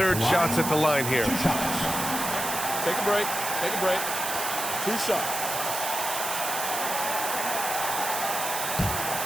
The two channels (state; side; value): noise; right; hiss, 3 dB below the sound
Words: shots at the line here. Take a break. Take a break. 2 shots.